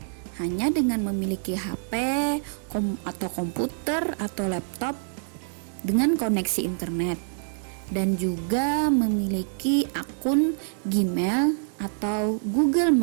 hanya dengan memiliki HP atau komputer atau laptop dengan koneksi internet dan juga memiliki akun Gmail atau Google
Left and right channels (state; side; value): silent; left; digital silence